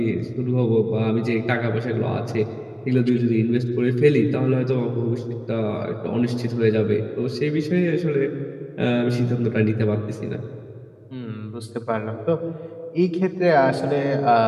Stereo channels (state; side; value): identical; both; correlation 1.00